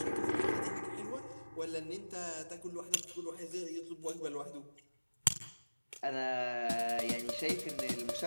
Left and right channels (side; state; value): both; inverted; correlation -1.00